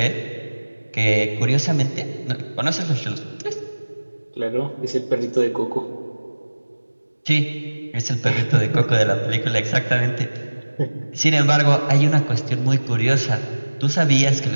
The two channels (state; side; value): inverted; both; correlation -1.00